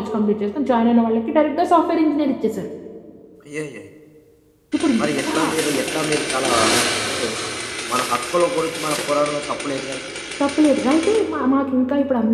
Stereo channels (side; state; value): both; identical; correlation 1.00